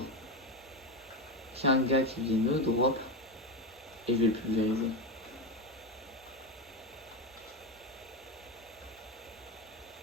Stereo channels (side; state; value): both; normal; correlation 0.16